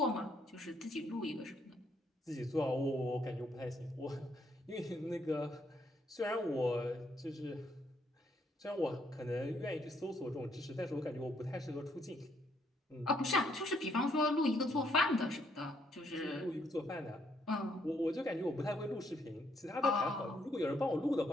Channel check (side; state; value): both; normal; correlation 0.71